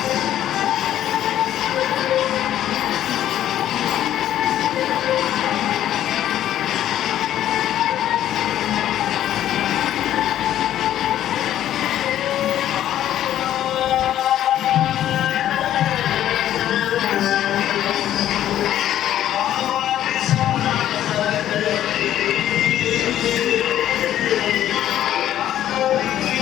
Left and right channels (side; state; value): right; quieter; 11.9 dB